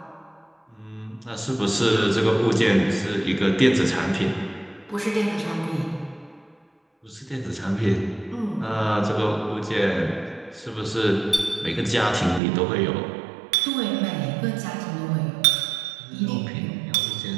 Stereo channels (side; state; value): left; drops out; at 12.4 s